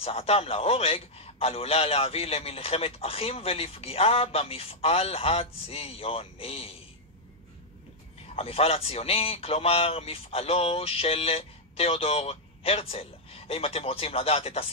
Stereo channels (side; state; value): both; normal; correlation -0.03